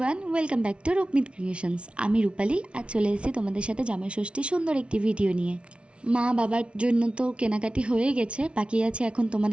welcome back to Rupmit creations. আমি রূপালী, আজ চলে এসেছি তোমাদের সাথে জামাই ষষ্ঠীর সুন্দর একটি ভিডিও নিয়ে। মা বাবার জন্য তো কেনাকাটি হয়ে গেছে, বাকি আছে এখন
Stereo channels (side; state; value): left; late; 0.059 ms